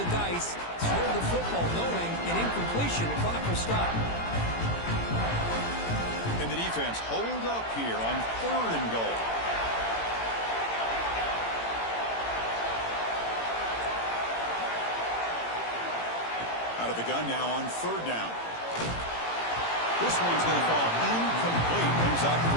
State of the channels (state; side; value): late; right; 18 ms